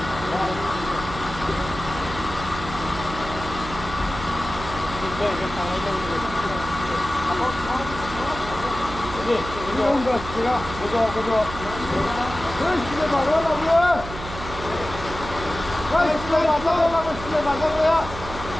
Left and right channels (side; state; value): right; noise; hum, 10 dB below the sound